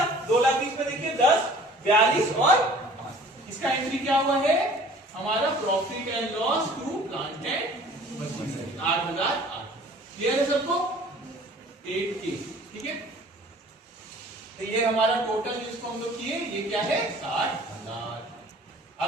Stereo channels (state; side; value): normal; both; correlation 0.49